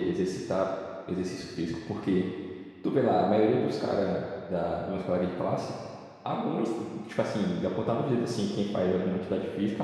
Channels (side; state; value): both; identical; correlation 1.00